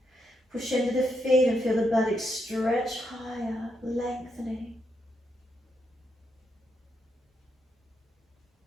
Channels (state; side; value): normal; both; correlation 0.80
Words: Push into the feet and feel the buttocks stretch higher, lengthening.